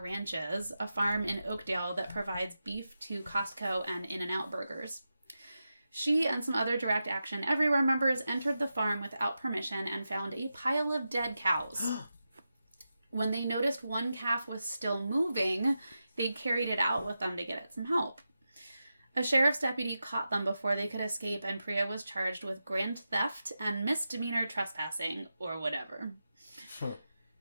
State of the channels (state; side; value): inverted; both; correlation -0.90